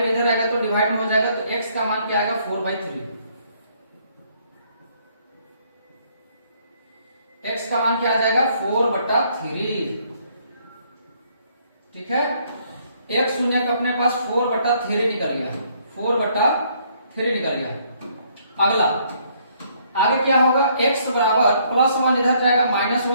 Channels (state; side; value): inverted; both; correlation -0.67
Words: इधर आएगा तो डिवाइड में हो जाएगा, तो x का मान क्या आएगा 4/3, x का मान क्या आ जाएगा 4/3। ठीक है, एक शून्य का अपने पास 4/3 निकल गया, 4/3 निकल गया। अगला आगे क्या होगा, x बराबर प्लस 1 इधर जाएगा